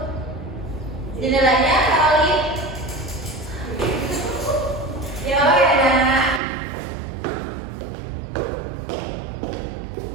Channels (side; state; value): left; drops out; at 6.4 s